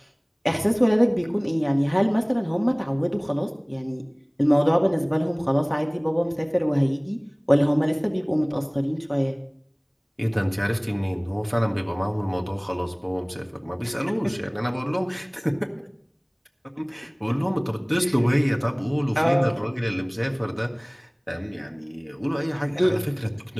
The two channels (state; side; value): identical; both; correlation 1.00